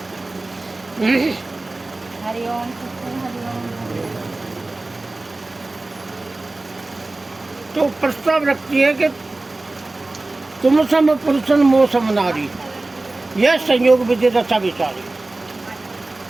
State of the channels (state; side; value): quieter; left; 3.0 dB